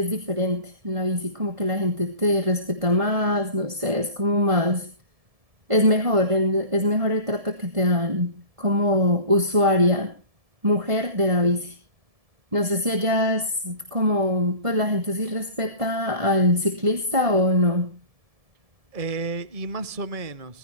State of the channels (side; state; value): left; late; 1.7 ms